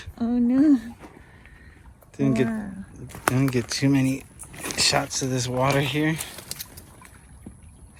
Oh no. Didn't get too many shots of this water here.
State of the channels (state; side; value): identical; both; correlation 1.00